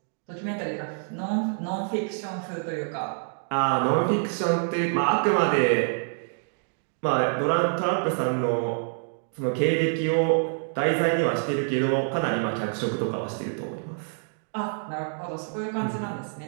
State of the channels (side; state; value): left; silent; 59 dB below the other